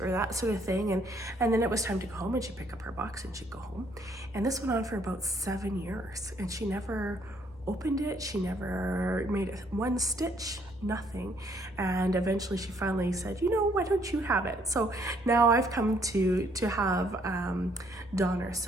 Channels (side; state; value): both; normal; correlation 0.67